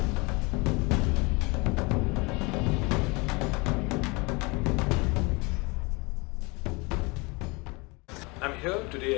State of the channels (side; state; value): right; quieter; 27.0 dB